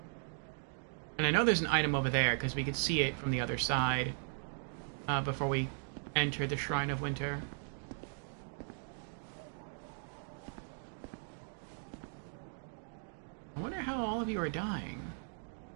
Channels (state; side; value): silent; left; 53 dB below the other